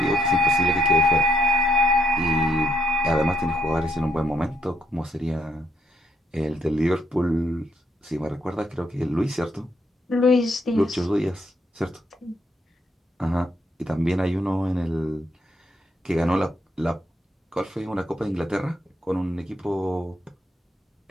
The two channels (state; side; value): normal; both; correlation 0.75